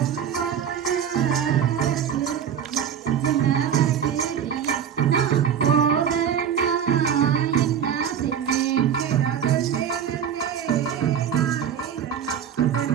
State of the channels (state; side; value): quieter; left; 8.4 dB